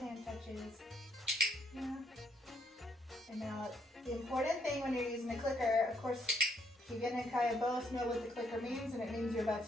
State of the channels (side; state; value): both; normal; correlation 0.71